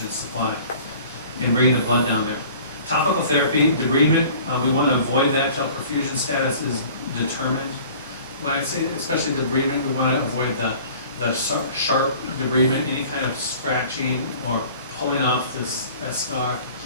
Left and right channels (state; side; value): inverted; both; correlation -0.47